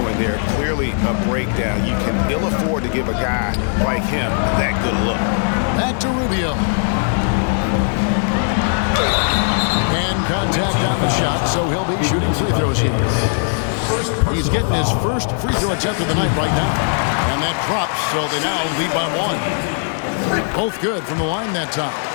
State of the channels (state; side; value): silent; right; 67 dB below the other